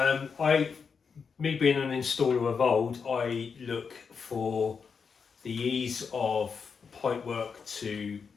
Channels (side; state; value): right; quieter; 5.8 dB